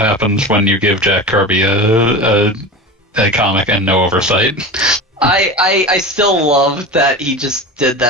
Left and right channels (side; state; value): both; normal; correlation 0.28